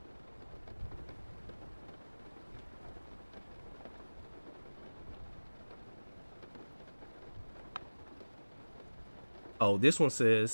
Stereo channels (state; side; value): inverted; both; correlation -1.00